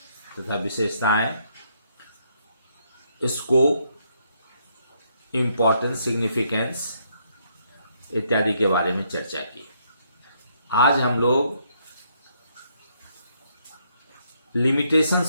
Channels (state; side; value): inverted; both; correlation -0.72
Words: तथा विशेषताएं, स्कोप, इम्पोर्टेंस, सिग्निफिकेंस इत्यादि के बारे में चर्चा की। आज हम लोग